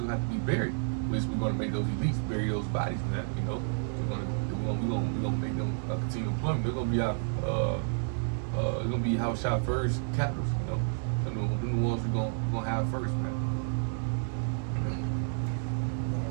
will have to be buried. Which we're going to make those elites bury those bodies, man. We're gonna make them continue employment. They're gonna be our they're gonna be house shot first captives. They're the ones we're gonna have first, man.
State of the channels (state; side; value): silent; left; 57 dB below the other